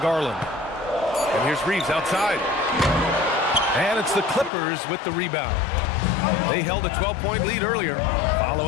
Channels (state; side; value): drops out; right; at 4.5 s